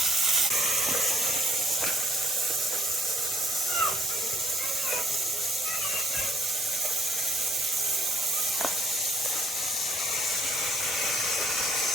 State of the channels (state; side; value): normal; both; correlation 0.63